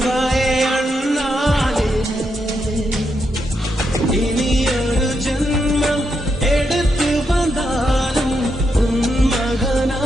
அண்ணாலே இனி ஒரு ஜென்மம் எடுத்து வந்தாலும் உன்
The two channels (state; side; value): normal; both; correlation 0.82